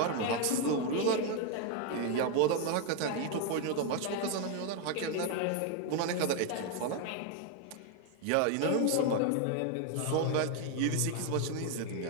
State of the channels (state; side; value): different; both; correlation 0.01